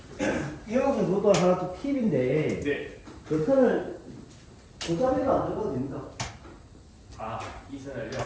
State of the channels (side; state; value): both; identical; correlation 1.00